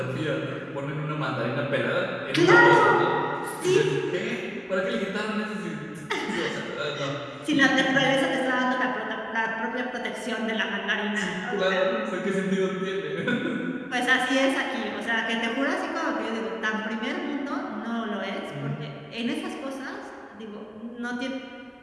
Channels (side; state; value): both; identical; correlation 1.00